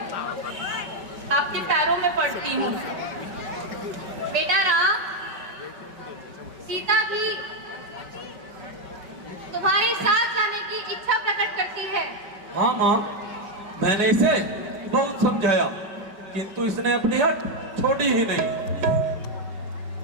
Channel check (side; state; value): left; late; 5.2 ms